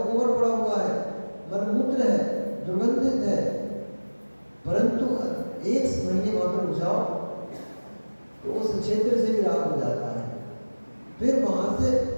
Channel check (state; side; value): inverted; both; correlation -1.00